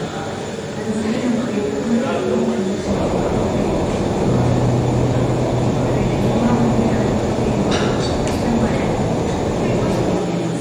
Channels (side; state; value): both; identical; correlation 1.00